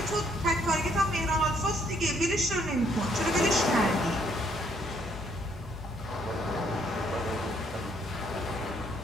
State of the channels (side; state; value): both; normal; correlation 0.68